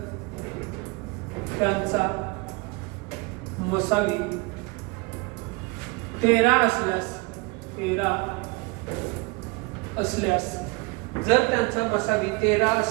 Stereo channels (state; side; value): quieter; left; 27.2 dB